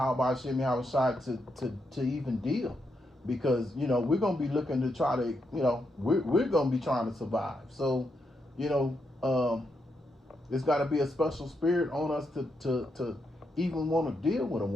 Hashem Yahweh Shai to even deal, because we're going to be looking to try to we're going to be trying to survive. So it's got to be a special spirit on us to even want to deal with a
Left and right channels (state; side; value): normal; both; correlation 0.81